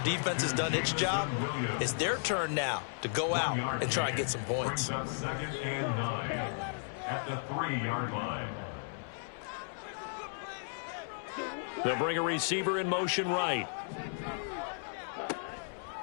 defense has done its job, it's their turn now to go out and try and get some points. 2nd and 9 at the 3-yard line. They'll bring a receiver in motion right.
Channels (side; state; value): right; silent; 55 dB below the other